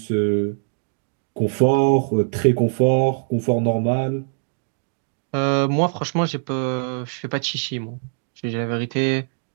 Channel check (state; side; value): silent; left; 61 dB below the other